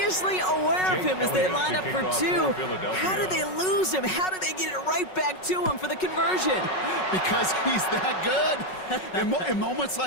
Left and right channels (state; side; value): late; right; 5.4 ms